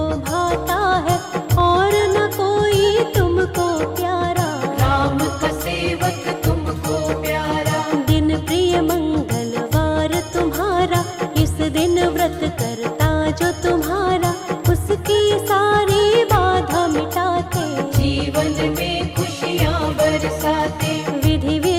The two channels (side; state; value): both; identical; correlation 1.00